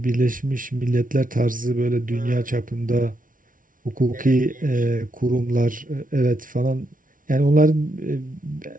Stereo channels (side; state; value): left; late; 0.39 ms